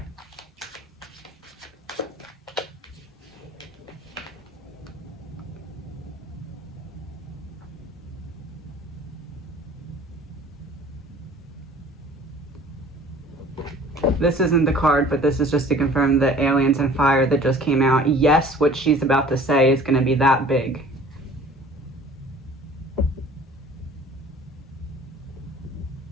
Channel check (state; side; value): normal; both; correlation 0.48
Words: This isn't the card, but this is just to confirm the aliens and fire that just came out. Yes, what she's about to say is going to be that big.